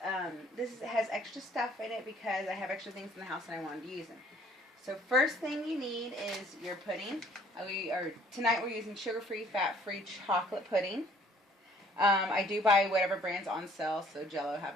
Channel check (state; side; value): normal; both; correlation 0.58